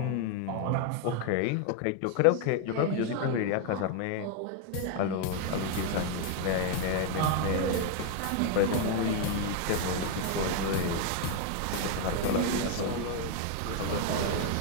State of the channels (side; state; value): both; different; correlation 0.01